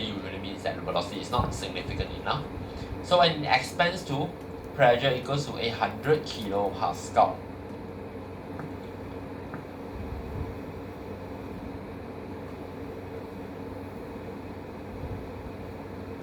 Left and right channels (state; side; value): identical; both; correlation 1.00